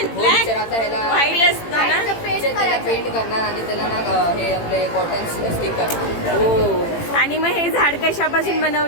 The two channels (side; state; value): right; late; 18 ms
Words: हो ब्लॅक टीचर, आता ह्याला व्हाईट असतं ना? टीचर त्याला पेंट करणार आणि त्याला ना हे आपले कॉटन स्टिक करणार. हो. आणि मग हे झाड कशापासून